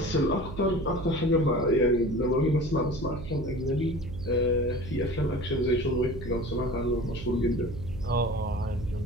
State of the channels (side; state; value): right; noise; hum, 10 dB below the sound